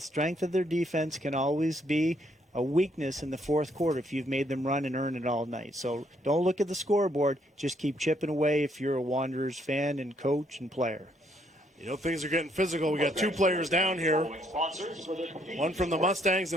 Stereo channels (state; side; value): normal; both; correlation 0.70